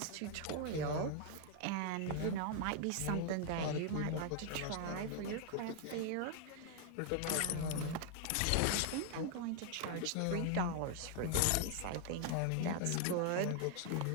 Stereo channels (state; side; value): different; both; correlation 0.00